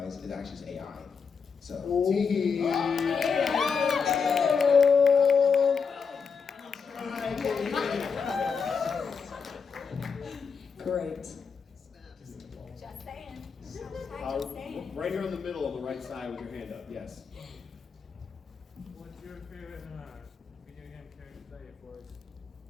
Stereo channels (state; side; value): quieter; right; 5.7 dB